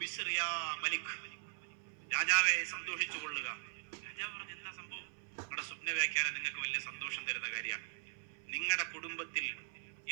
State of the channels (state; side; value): silent; left; 51 dB below the other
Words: മലിക്, രാജാവെ സന്തോഷിച്ചു കൊള്ളുക. രാജാവ് പറഞ്ഞു, എന്താ സംഭവം? നിങ്ങളുടെ സ്വപ്ന വ്യാഖ്യാനം നിങ്ങൾക്ക് വലിയ സന്തോഷം തരുന്ന കാര്യമാണ്. നിങ്ങളുടെ കുടുംബത്തിൽ